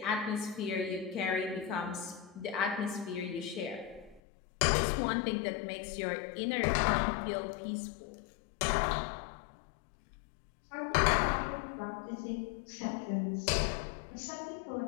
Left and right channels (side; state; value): right; drops out; at 4.2 s